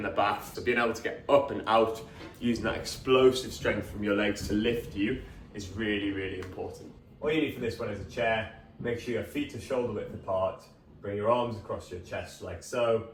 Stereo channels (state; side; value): identical; both; correlation 1.00